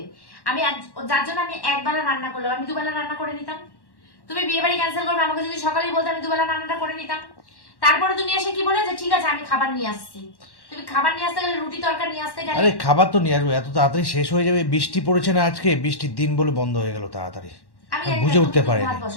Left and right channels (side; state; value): right; late; 1.1 ms